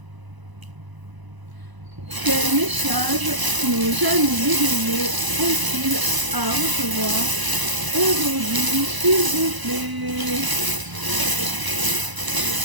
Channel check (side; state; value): left; late; 1.0 ms